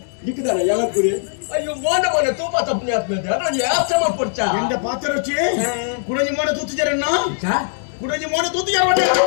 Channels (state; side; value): silent; right; digital silence